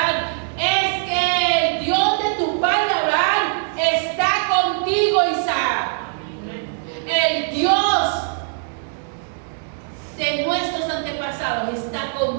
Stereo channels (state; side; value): silent; left; digital silence